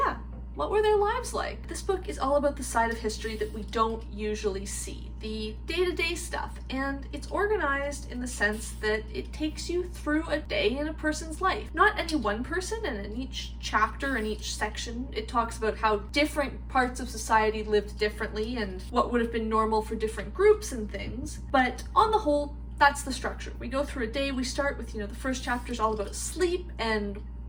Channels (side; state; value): both; identical; correlation 1.00